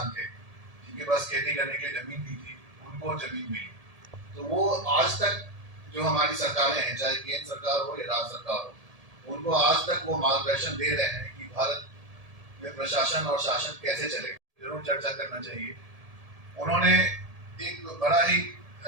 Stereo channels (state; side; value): late; left; 1.7 ms